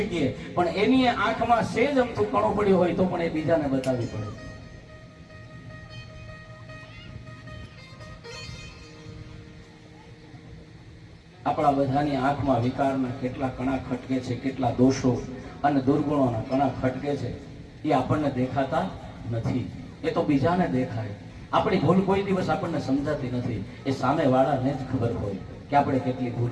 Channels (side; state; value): both; identical; correlation 1.00